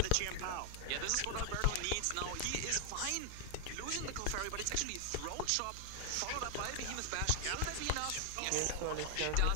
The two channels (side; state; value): both; different; correlation 0.00